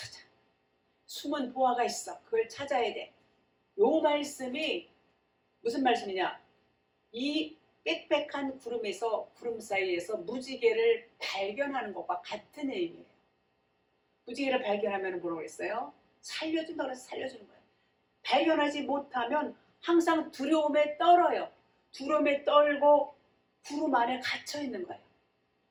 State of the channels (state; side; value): identical; both; correlation 1.00